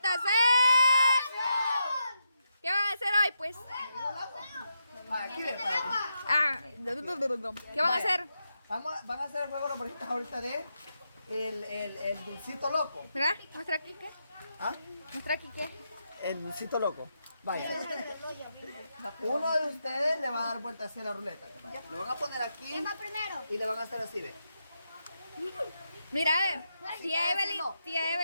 ¿Qué van a hacer hoy, pues? ¿Qué van a hacer? Van a hacer el juego de los borritas ahorita de el dulcito loco. Mira, muestra aquí qué. ¿Ah? Muestra aquí qué. El dulcito loco. Vaya. Uno de ustedes le va a dar vuelta hacia la ruleta. Vaya. Lo van a poner aquí y le van a hacer así, ve. Mira, tía Evelyn,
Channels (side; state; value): both; inverted; correlation -0.85